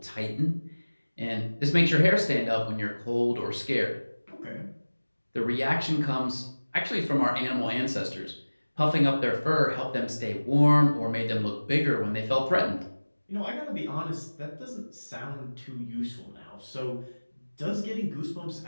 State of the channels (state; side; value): inverted; both; correlation -1.00